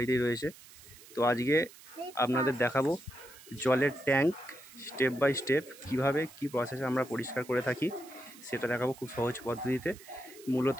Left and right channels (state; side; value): noise; right; hiss, 20 dB below the sound